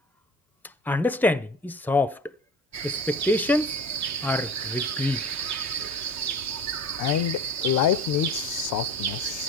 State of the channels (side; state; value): both; normal; correlation 0.37